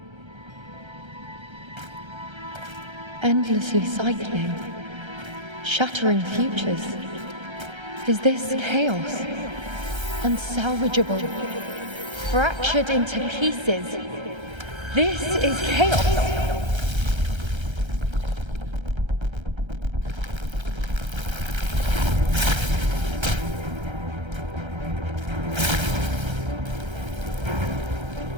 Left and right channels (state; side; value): late; left; 1.3 ms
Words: Endlessly cycling, shattering futures. Is this chaos? Unsalvageable, fractured into pieces. This is chaos.